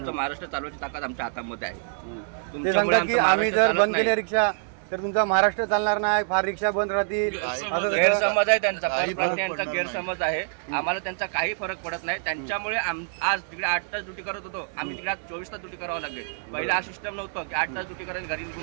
महाराष्ट्र चालवायची ताकद आमच्या हातामध्ये आहे. ते सांगतात की आम्ही जर बंद केल्या रिक्षा तर तुमचा महाराष्ट्र चालणार नाही, फार रिक्षा बंद राहतील. गैरसमज आहे त्यांचा, परप्रांतीयांचा गैरसमज आहे. आम्हाला त्यांचा काही फरक पडत नाही. त्यांच्यामुळे आज तिकडे 8 तास ड्युटी करत होतो, आम्ही तिकडे 24 तास ड्युटी करावं लागले. पहिला हा सिस्टम नव्हतं की 8 तास ड्युटी करायला घरी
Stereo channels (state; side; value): silent; left; digital silence